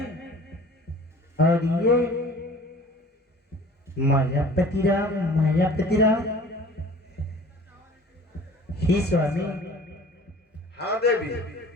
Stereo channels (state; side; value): normal; both; correlation 0.46